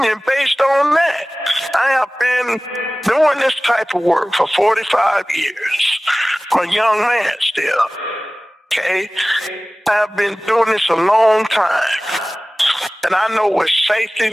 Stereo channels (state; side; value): normal; both; correlation 0.98